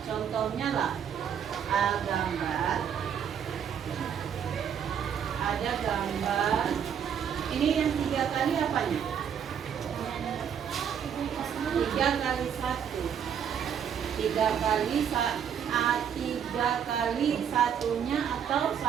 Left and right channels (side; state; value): left; quieter; 8.3 dB